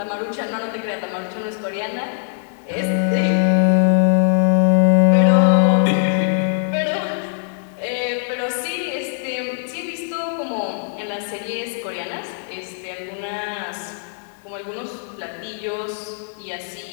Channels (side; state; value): right; silent; digital silence